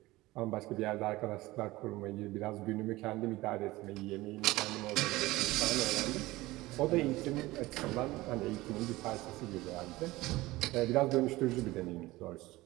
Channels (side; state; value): left; quieter; 19.1 dB